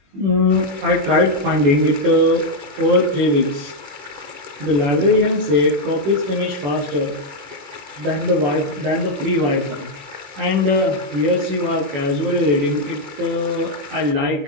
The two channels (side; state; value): left; late; 21 ms